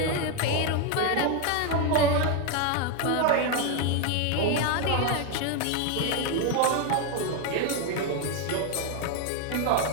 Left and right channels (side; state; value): both; different; correlation 0.01